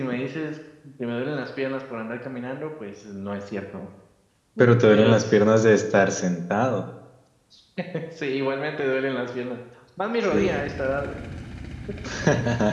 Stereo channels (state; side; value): identical; both; correlation 1.00